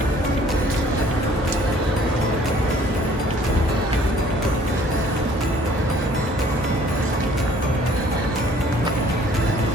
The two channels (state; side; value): normal; both; correlation 0.57